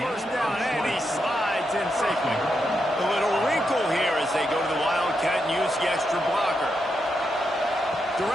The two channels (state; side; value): normal; both; correlation 0.84